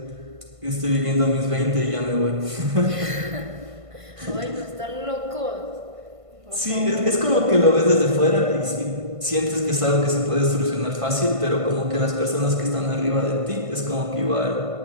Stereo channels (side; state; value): left; late; 1.5 ms